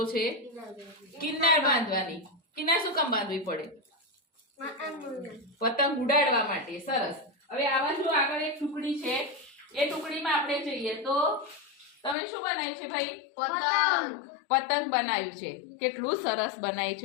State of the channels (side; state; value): right; drops out; at 12.2 s